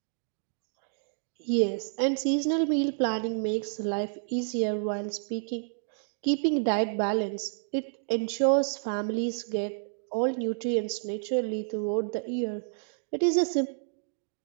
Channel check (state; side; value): silent; left; digital silence